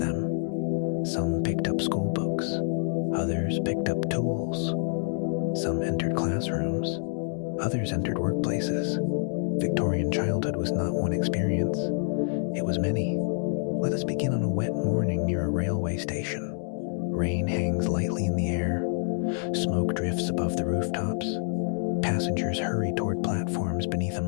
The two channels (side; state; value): right; silent; 59 dB below the other